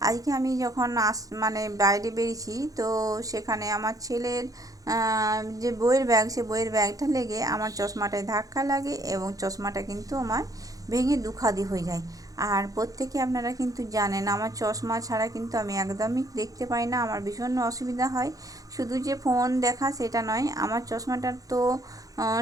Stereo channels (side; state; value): left; late; 0.17 ms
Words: আজকে আমি যখন মানে বাইরে বেরিয়েছি, তো সেখানে আমার ছেলের যে বইয়ের ব্যাগ, সে বইয়ের ব্যাগটা লেগে আমার চশমাটায় ধাক্কা লাগে এবং চশমাটা কিন্তু আমার ভেঙে দুখাদি হয়ে যায়। আর প্রত্যেকে আপনারা কিন্তু জানেন, আমার চশমা ছাড়া কিন্তু আমি একদমই দেখতে পাই না, আমার ভীষণ অসুবিধা হয়। শুধু যে ফোন দেখা সেটা নয়, আমার চশমাটার তো